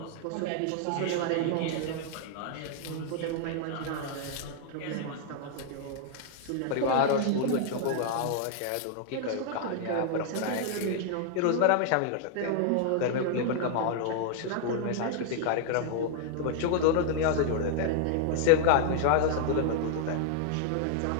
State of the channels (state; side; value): different; both; correlation -0.01